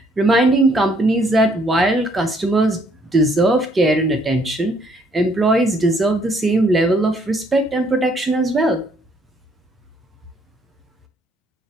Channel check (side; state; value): both; normal; correlation 0.66